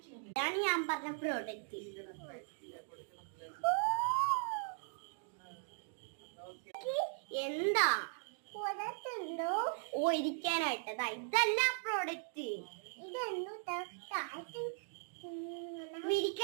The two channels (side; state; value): left; silent; digital silence